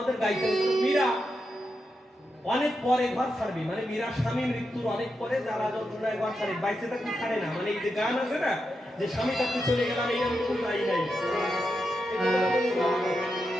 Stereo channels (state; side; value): normal; both; correlation 0.86